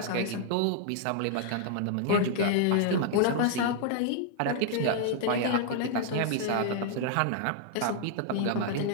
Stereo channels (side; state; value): both; different; correlation 0.00